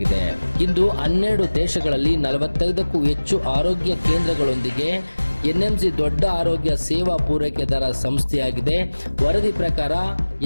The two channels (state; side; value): inverted; both; correlation -1.00